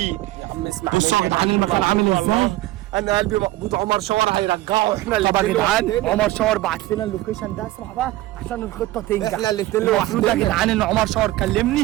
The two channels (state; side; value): quieter; left; 16.9 dB